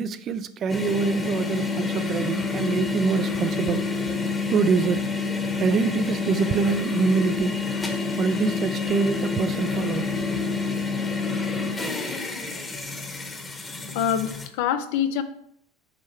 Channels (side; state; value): both; normal; correlation 0.56